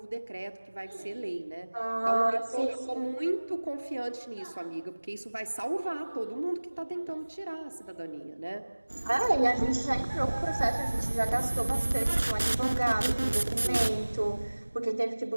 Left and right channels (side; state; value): both; inverted; correlation -1.00